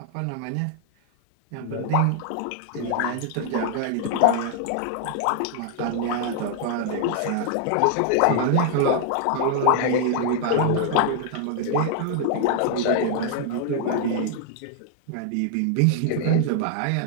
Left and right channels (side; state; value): both; different; correlation 0.00